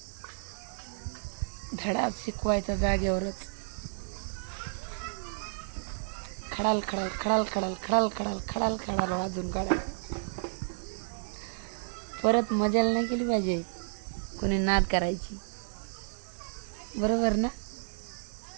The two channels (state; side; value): silent; left; 57 dB below the other